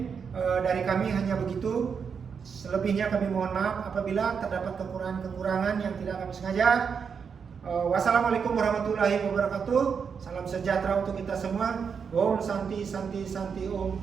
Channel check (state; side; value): quieter; left; 6.4 dB